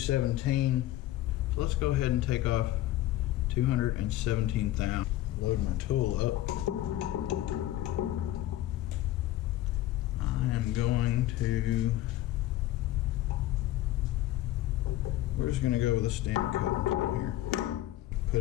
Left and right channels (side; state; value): right; quieter; 14.8 dB